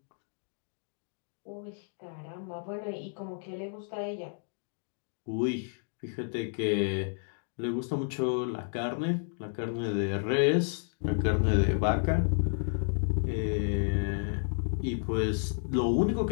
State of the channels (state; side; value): silent; right; digital silence